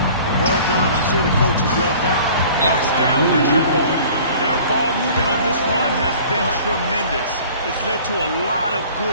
Well done. I'm sure the coaches love that. Knocks down the triple. Their ball movement on this run has been tremendous. It's led to a lot of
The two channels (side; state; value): both; inverted; correlation -0.48